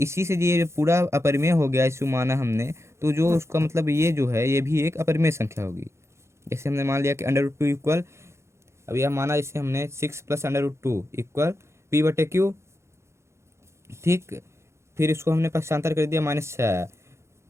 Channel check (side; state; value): left; late; 0.13 ms